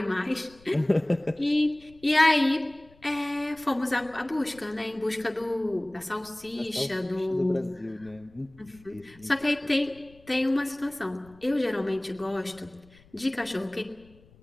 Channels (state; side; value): noise; left; rumble, 26 dB below the sound